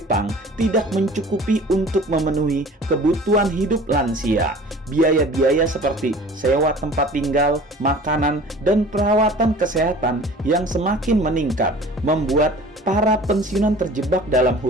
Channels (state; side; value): normal; both; correlation 0.45